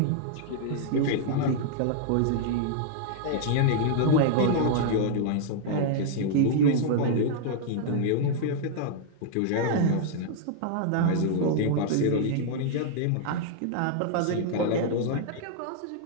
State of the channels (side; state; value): both; different; correlation -0.01